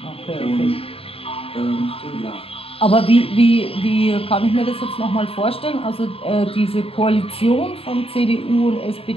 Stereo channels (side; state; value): right; late; 0.27 ms